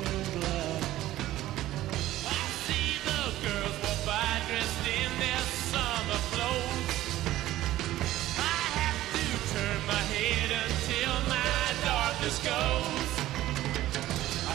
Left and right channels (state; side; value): quieter; left; 14.9 dB